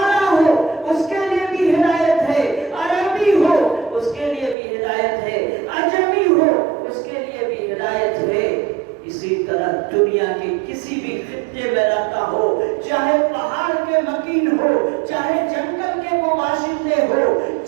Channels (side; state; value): left; drops out; at 4.5 s